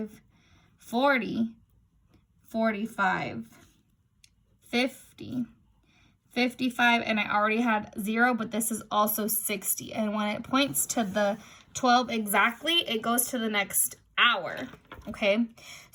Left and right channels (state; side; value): identical; both; correlation 1.00